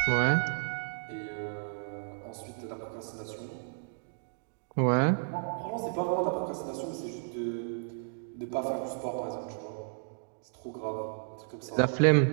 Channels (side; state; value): left; silent; digital silence